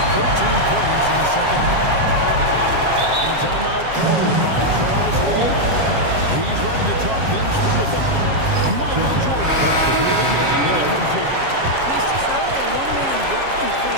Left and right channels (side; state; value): left; late; 7.4 ms